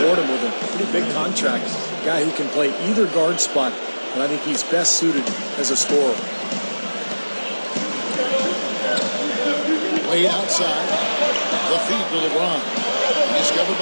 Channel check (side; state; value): both; inverted; correlation -1.00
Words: him with a pretty big contract. A guy who can play either guard spot, and I think he's best suited as a scorer. Wade outside. The feed to LeBron. Discovered